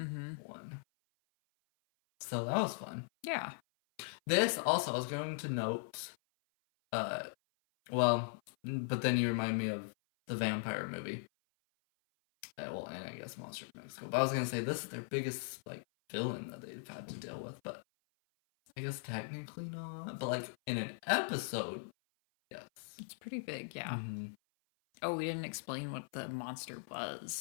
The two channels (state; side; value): silent; right; 52 dB below the other